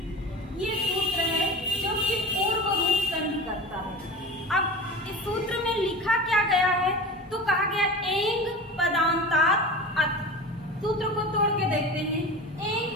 ये सूत्र है जो कि पूर्व रूप संधि करता है। अब इस सूत्र में लिखा क्या गया है? तो कहा गया एंग पदांतात् अत्। सूत्र को तोड़ के देखते हैं। एंग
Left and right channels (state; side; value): normal; both; correlation 0.32